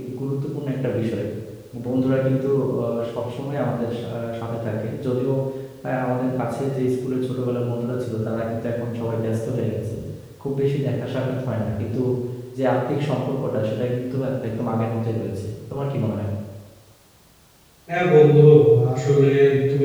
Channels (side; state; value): both; identical; correlation 1.00